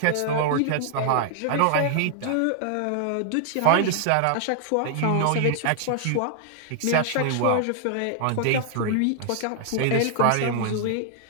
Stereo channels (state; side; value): different; both; correlation 0.00